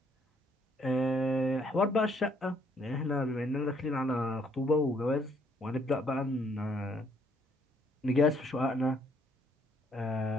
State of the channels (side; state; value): both; normal; correlation 0.68